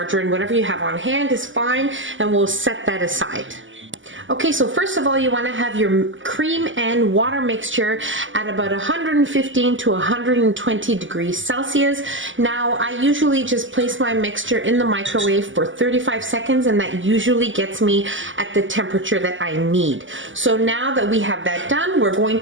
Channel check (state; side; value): late; left; 0.56 ms